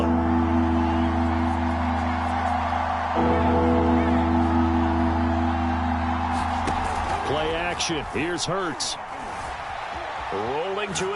Play action. Here's Hurts. Rolling to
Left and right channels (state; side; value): identical; both; correlation 1.00